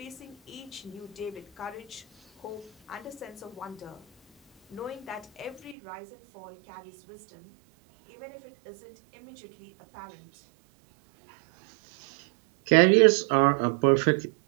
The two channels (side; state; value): left; drops out; at 5.8 s